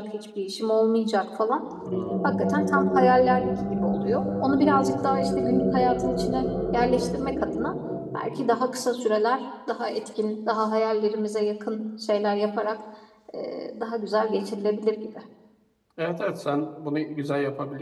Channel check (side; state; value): both; identical; correlation 1.00